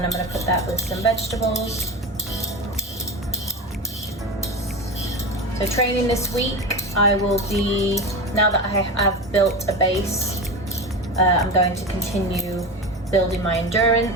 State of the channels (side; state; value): both; normal; correlation 0.25